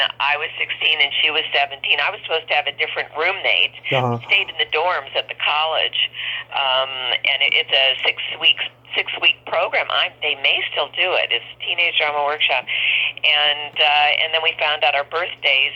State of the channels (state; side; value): identical; both; correlation 1.00